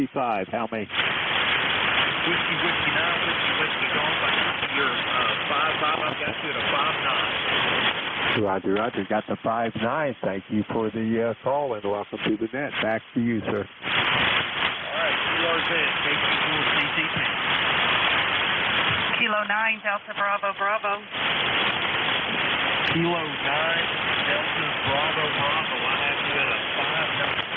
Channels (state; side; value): identical; both; correlation 1.00